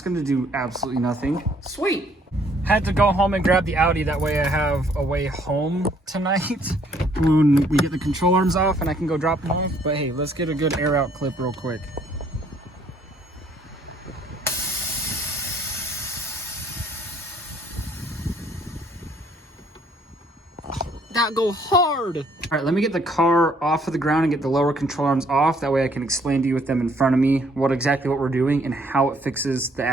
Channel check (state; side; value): normal; both; correlation 0.64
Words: gonna do absolutely nothing. Sweet. Had to go home and grab the Audi, that way I have a way home tonight when we get the control arms off and I can go drop them off. But hey, let's get a good air out clip real quick. That go hard. All right, let me get the car off of the ground and get the lower control arms off. That way I can explain to you with them in front of me what we're doing and how it fixes the